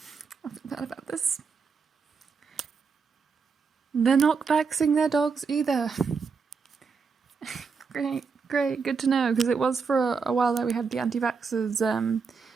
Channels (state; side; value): quieter; left; 5.4 dB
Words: I forgot about this. They're not vaxxing their dogs either. Great, good to know, because it was for a while there we had the anti-vaxxers